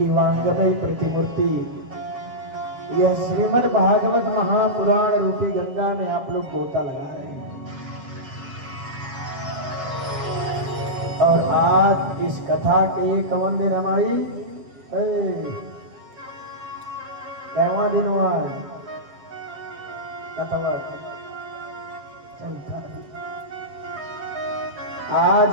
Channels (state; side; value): late; left; 7.4 ms